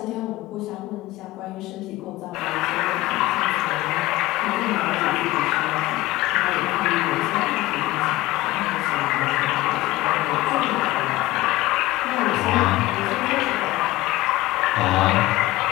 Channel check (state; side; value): quieter; right; 18.1 dB